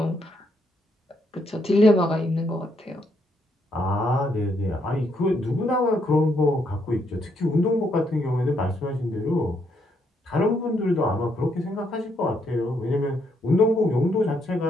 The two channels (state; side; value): normal; both; correlation 0.74